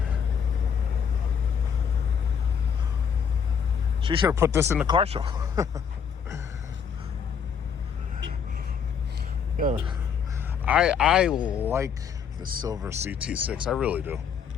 She should have put this in the car show. Yeah. I like the silver CT6. I really do.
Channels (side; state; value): right; quieter; 7.2 dB